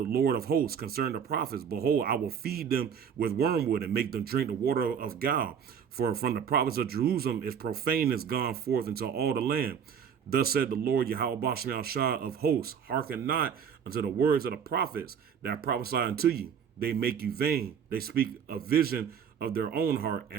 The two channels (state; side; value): quieter; left; 7.6 dB